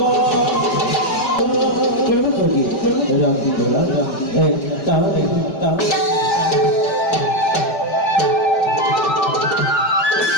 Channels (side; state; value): right; late; 5.1 ms